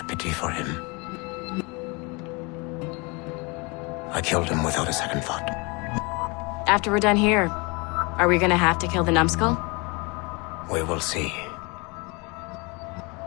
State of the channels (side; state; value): right; quieter; 28.7 dB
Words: pity for him. I killed him without a second thought. After we're done here, are we gonna have to kill the numbskull? We will see.